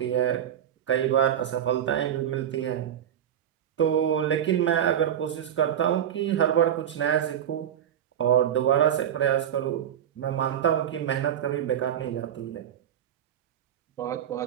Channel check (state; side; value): quieter; left; 10.0 dB